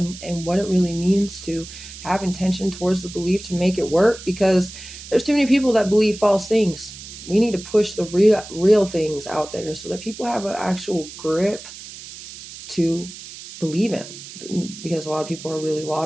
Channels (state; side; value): noise; right; hiss, 14 dB below the sound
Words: what it really means to have intention towards the belief to make it work, because there's too many people that believe false things. We need to push the real things out there so that people have an actual grip to believe in, because a lot of people are really